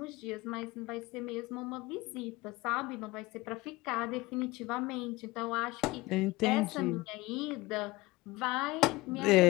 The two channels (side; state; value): right; quieter; 20.7 dB